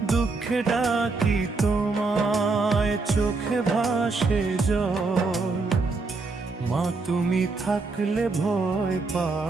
দুঃখে ডাকি তোমায়, চোখে ভাসে জল, মা তুমি থাকলে ভয়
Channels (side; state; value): left; quieter; 3.8 dB